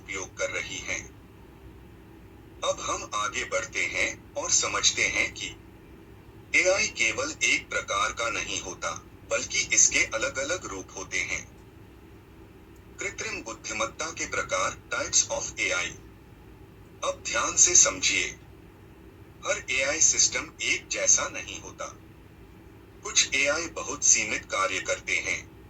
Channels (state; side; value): identical; both; correlation 1.00